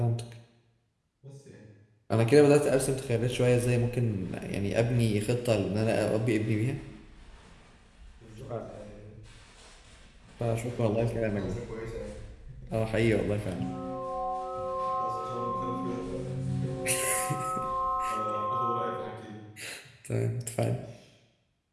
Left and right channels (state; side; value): identical; both; correlation 1.00